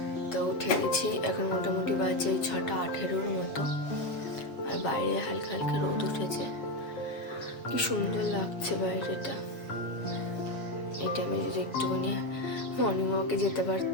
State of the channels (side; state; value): right; late; 7.4 ms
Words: তো উঠে গেছি, এখন মোটামুটি বাজে 6:18 মতো, আর বাইরে হালকা হালকা রোদ উঠেছে। কি সুন্দর লাগছে বাইরেটা। এই টাইমে যদি একটুখানি মর্নিং ওয়াকে যেতে